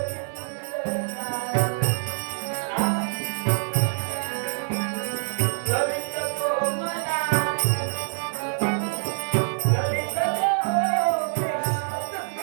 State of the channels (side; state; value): left; silent; digital silence